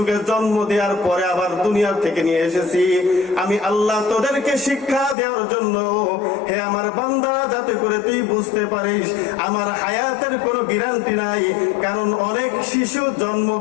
জন্ম দেওয়ার পরে আবার দুনিয়া থেকে নিয়ে এসেছি। আমি আল্লাহ তোদেরকে শিক্ষা দেওয়ার জন্য, হে আমার বান্দারা, যাতে করে তুই বুঝতে পারিস আমার হায়াতের কোনো গ্যারান্টি নাই। কারণ অনেক শিশু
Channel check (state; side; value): drops out; right; at 5.2 s